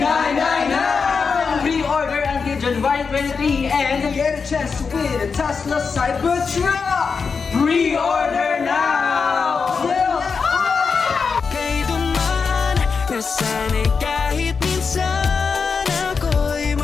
Pre-order until January 23 and get a chance to win a Tesla Cybertruck! Pre-order now!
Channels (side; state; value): right; quieter; 5.3 dB